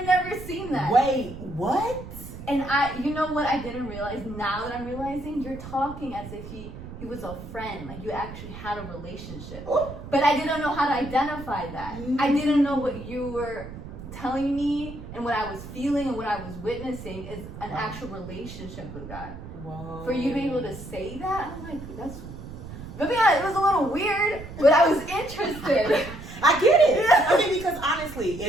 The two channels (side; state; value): right; noise; rumble, 12 dB below the sound